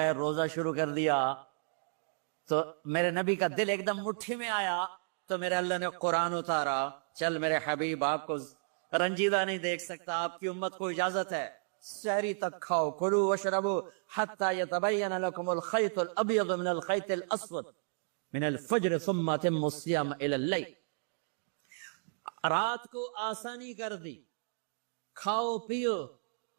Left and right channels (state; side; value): silent; left; digital silence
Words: روزہ شروع کر دیا. تو میرے نبی کا دل ایک دم مٹھی میں آیا, تو میرے اللہ نے قرآن اتارا, چل میرے حبیب آپ کو رنجیدہ نہیں دیکھ سکتا, آپ کی امت کو اجازت ہے سحری تک کھاؤ, کلوا واشربوا حتی یتبین لکم الخیط الابیض من الخیط الاسود من الفجر ثم اتموا الصیام الی اللیل. رات کو آسانی کر دی, کھاؤ پیو.